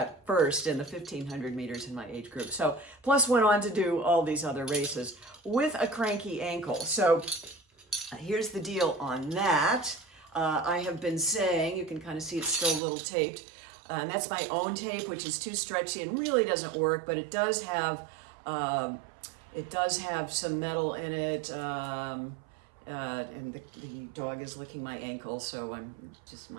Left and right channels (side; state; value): left; drops out; at 12.8 s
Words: first in the 1500 meters in my age group. So plus went on to do all these other races with a cranky ankle. So here's the deal on that. I have been saying, you can kind of see it's still a little taped, and that's my own tape, which is too stretchy and really doesn't work, but it does have some metal in it, and the dog is licking my ankle, so